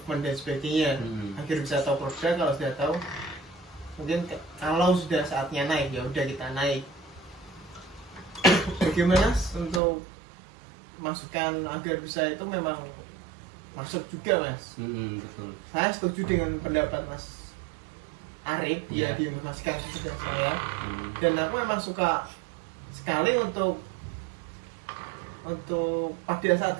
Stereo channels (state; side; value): drops out; left; at 9.8 s